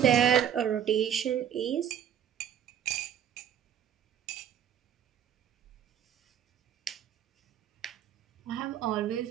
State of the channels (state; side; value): quieter; left; 9.4 dB